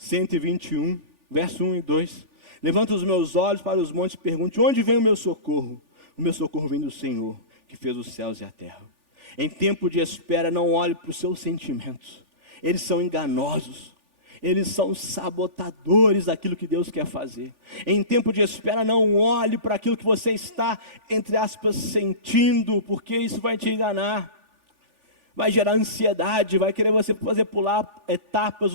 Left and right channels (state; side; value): late; left; 3.4 ms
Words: verso 1 e 2, levanto os meus olhos para os montes e pergunto, onde vem o meu socorro? O meu socorro vem do Senhor, que fez os céus e a terra. Em tempo de espera, não olhe para os seus sentimentos, eles são enganosos, eles são sabotadores daquilo que Deus quer fazer. Em tempo de espera, não olhe para aquilo que você está, entre aspas, sentindo, porque isso vai te enganar. Vai gerar ansiedade, vai querer você fazer pular etapas